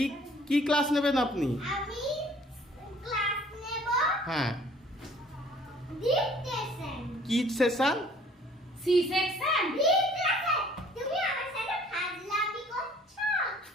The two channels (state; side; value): normal; both; correlation 0.55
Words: কি ক্লাস নেবেন আপনি? হ্যাঁ, কি সেশন? C section.